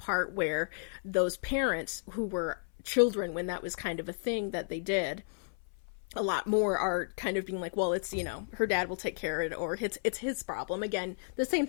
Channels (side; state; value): right; silent; 56 dB below the other